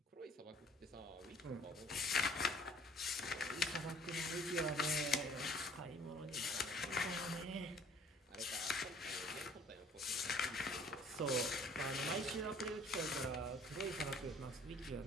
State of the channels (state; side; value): normal; both; correlation 0.55